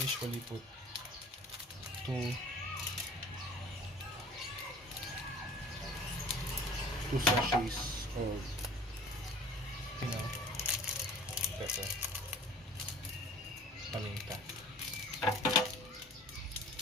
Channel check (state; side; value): normal; both; correlation 0.47